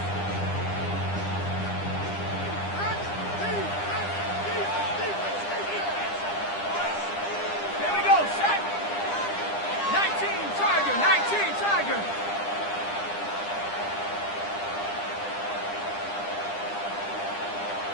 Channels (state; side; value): late; right; 9.9 ms